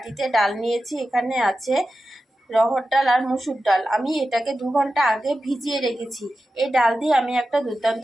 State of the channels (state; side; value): normal; both; correlation 0.92